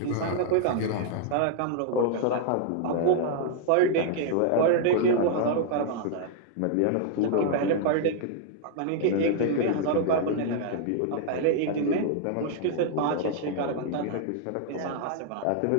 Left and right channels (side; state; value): both; different; correlation -0.01